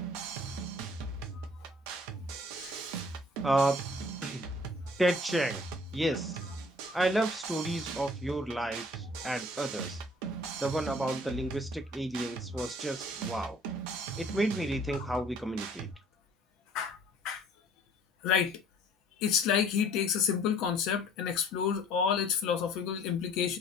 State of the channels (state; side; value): normal; both; correlation 0.54